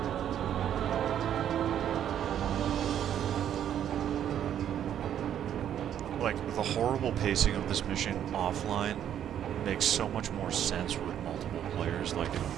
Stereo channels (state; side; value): quieter; left; 10.0 dB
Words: Like, the horrible pacing of this mission offline makes so much more sense with multiple players. Like,